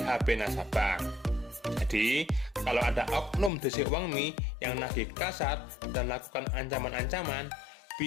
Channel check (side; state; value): right; drops out; at 3.5 s